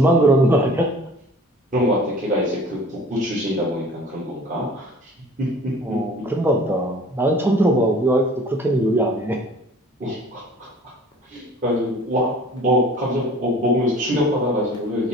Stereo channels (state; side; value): normal; both; correlation 0.47